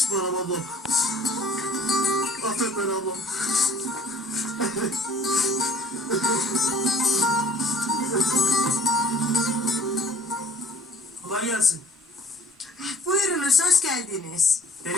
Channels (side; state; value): both; normal; correlation 0.52